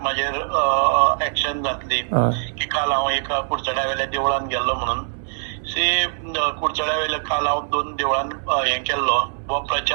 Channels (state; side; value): silent; left; 64 dB below the other